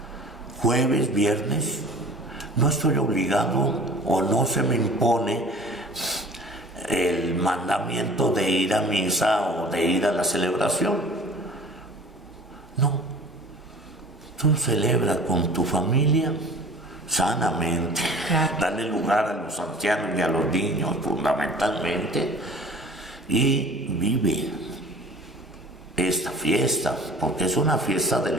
Jueves, viernes, no estoy obligado o no se me impone el mandamiento de ir a misa o de ir a la celebración. No. Tú celebra con tu familia sanamente. Claro. Dale lugar a los ancianos y a los niños fundamentalmente. Y vive esta fiesta, porque es una fiesta de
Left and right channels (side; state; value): both; normal; correlation 0.45